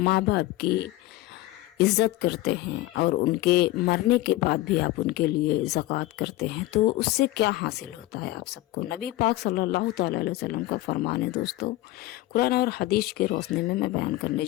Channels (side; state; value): right; quieter; 17.1 dB